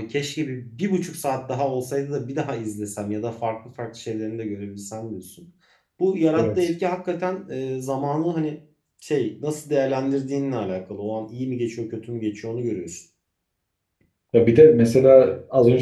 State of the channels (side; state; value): both; identical; correlation 1.00